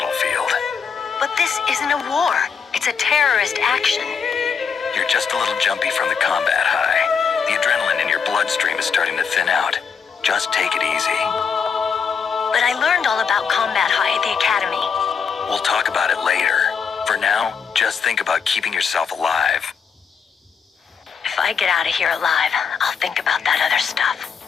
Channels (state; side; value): quieter; right; 6.3 dB